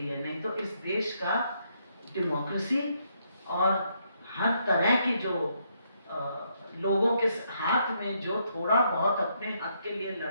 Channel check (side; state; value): both; inverted; correlation -0.75